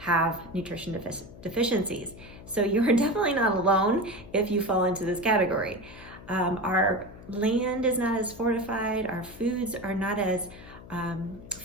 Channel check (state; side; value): noise; left; hum, 17 dB below the sound